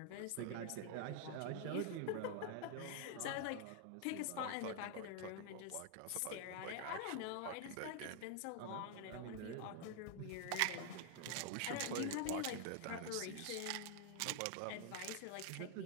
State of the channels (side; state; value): both; different; correlation 0.00